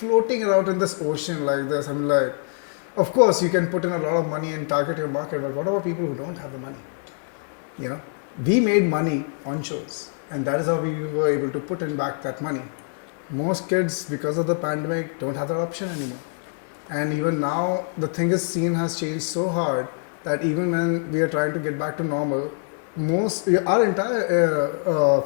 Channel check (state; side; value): silent; right; 62 dB below the other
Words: around in this ocean like this, of course you can put in a lot of money and target your market, but what about people who don't have the money? We made money on shows, and that is how we were able to put in back that money. Most kids, because of the pandemic, don't have that option anymore. And even now, the thing is, scene has changed so hard that even when we are trying to get back to normal, our entire